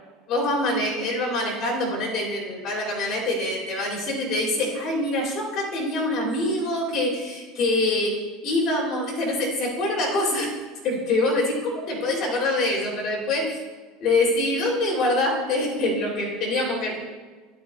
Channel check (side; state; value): both; normal; correlation 0.31